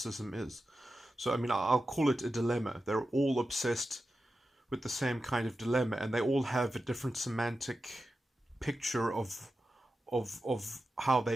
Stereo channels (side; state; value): both; normal; correlation 0.92